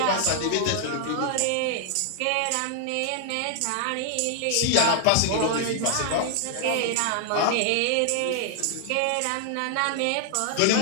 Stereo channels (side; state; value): both; different; correlation 0.00